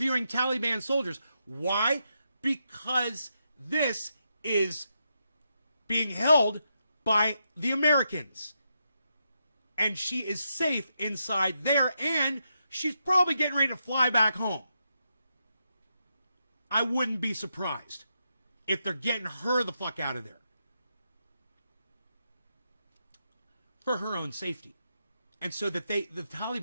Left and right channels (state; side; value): inverted; both; correlation -0.83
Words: Taliban soldiers? Why? Because this is being held by the Americans. And she is safe inside there, and she's probably getting ready to fly back home. I wouldn't be surprised if they're getting her the fuck out of there. For her own safety. And so that the